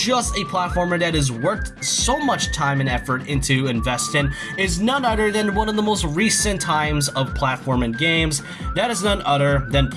a platformer that is worked so much time and effort into investing, is none other than one of the most recent times of platforming games. That is none other than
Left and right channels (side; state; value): both; identical; correlation 1.00